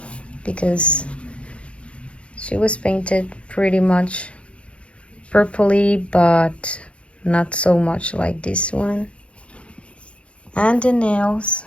because she was painted pretty much purpley, but not so much like this one. And the nails,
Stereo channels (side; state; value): right; late; 0.060 ms